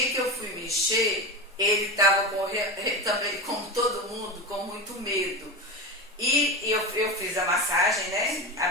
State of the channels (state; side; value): normal; both; correlation 0.22